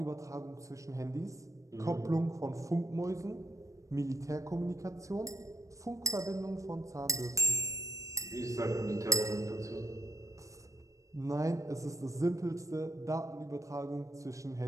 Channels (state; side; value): late; left; 0.16 ms